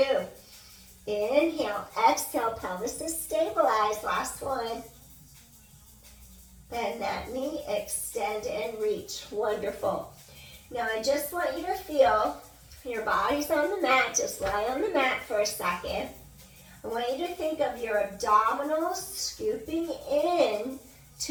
Inhale, exhale. Pelvis is stabilized. Last one. Bend that knee, extend and reach. Wonderful. Now I just want you to feel your body's on the mat. Just lie on the mat for a second. I want you to think of your abdominals scooping in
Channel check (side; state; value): both; identical; correlation 1.00